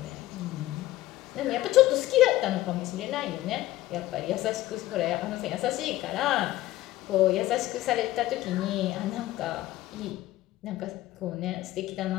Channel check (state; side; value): quieter; right; 15.8 dB